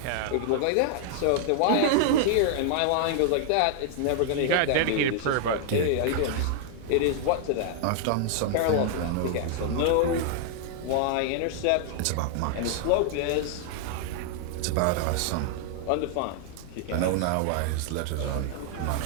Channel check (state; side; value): different; both; correlation 0.00